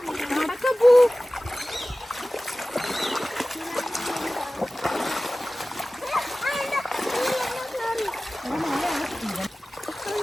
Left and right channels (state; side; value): normal; both; correlation 0.97